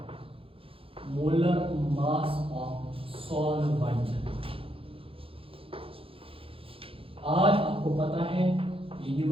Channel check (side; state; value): left; late; 0.27 ms